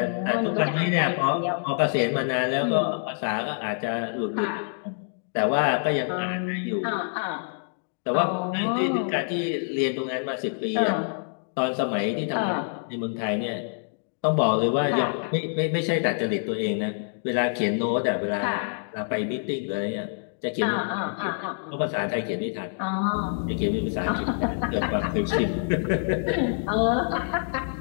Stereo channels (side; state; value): right; silent; digital silence